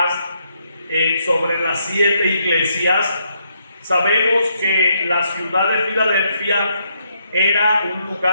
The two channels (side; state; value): both; inverted; correlation -0.76